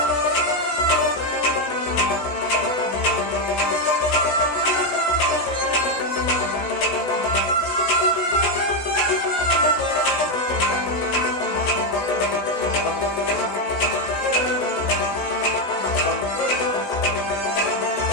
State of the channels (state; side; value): late; right; 16 ms